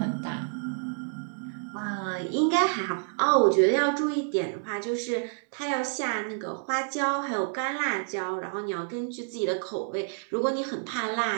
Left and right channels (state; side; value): silent; left; digital silence